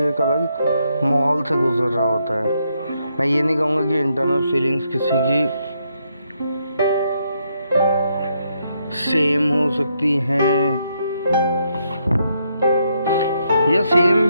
एक अलग माहौल से गुजर रहा होता है। मैं ये नहीं कहूँगा कि इंटरनल फीलिंग्स किसी की सेम हो सकती हैं, या सेम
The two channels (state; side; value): inverted; both; correlation -0.77